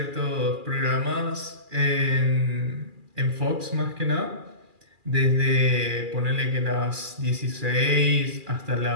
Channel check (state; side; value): late; left; 2.4 ms